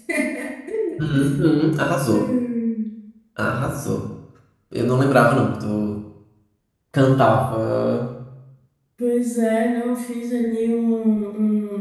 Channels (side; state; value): both; identical; correlation 1.00